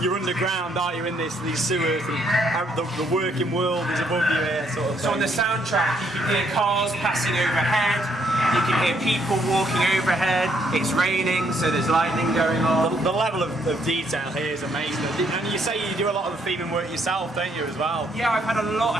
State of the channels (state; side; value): normal; both; correlation 0.71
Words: you're underground, aren't you, in these sewers. And the working world is above you here, sort of thing. So on the soundtrack, you can hear cars passing overhead. You can hear people walking overhead. It's raining, so there's lightning going on. The level of detail here is amazing. And you say you do a lot of the theming work yourself, don't you, as well? Yeah, I've had a lot